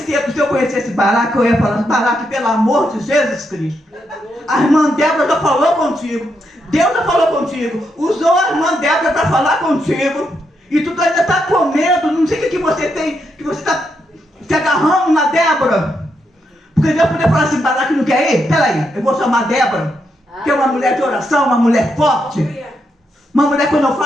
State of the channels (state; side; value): normal; both; correlation 0.81